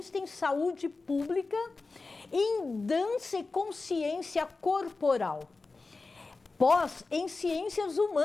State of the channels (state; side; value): quieter; right; 3.8 dB